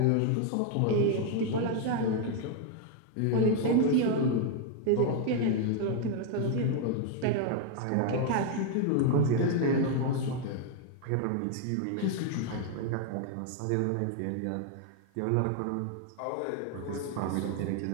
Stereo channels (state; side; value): different; both; correlation 0.00